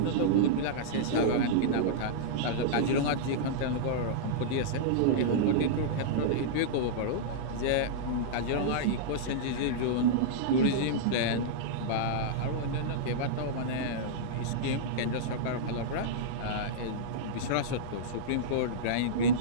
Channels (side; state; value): both; different; correlation -0.03